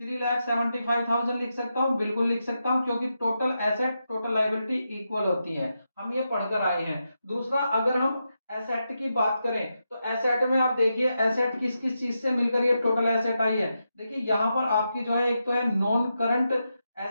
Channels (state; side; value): inverted; both; correlation -0.86